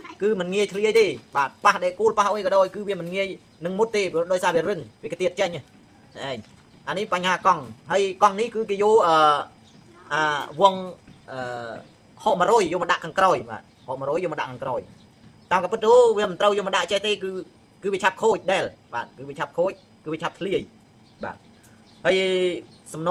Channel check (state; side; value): identical; both; correlation 1.00